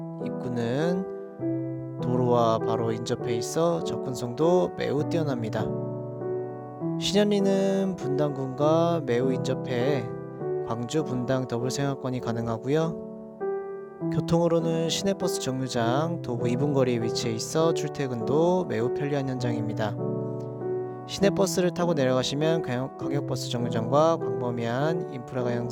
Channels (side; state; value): both; identical; correlation 1.00